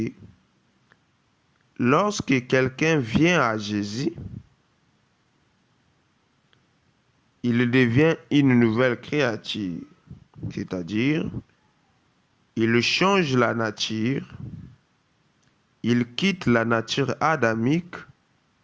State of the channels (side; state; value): both; identical; correlation 1.00